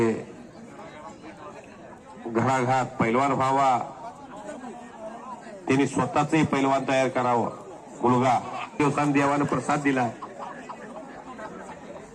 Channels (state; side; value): identical; both; correlation 1.00